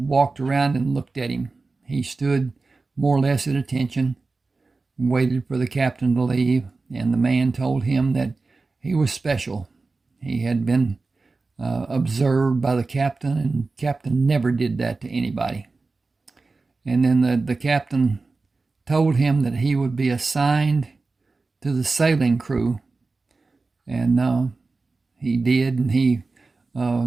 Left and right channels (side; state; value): left; quieter; 3.8 dB